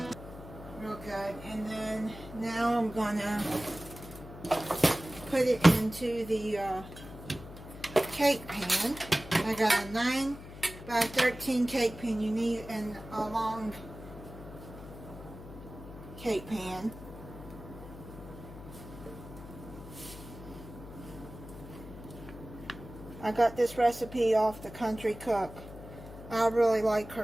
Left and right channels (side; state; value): left; noise; hum, 14 dB below the sound